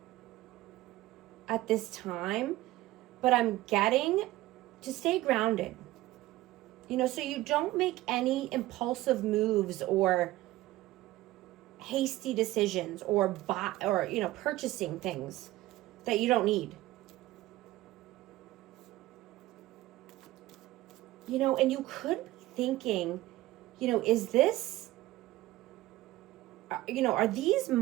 at this time, but I'm getting to stay grounded. You know, so you don't make any impulsive moves or hasty decisions or purchasing things that you don't need. You know, and you could be thinking, you know, is this, you know, are these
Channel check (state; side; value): quieter; left; 17.1 dB